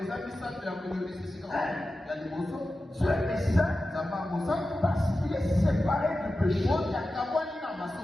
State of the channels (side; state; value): both; normal; correlation 0.93